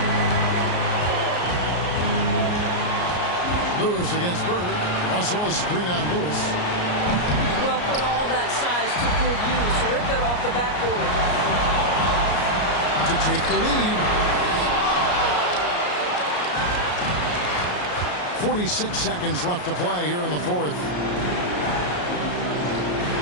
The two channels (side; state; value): right; late; 33 ms